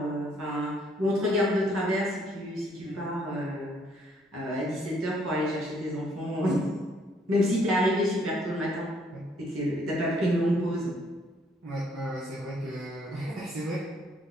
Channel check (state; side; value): normal; both; correlation 0.66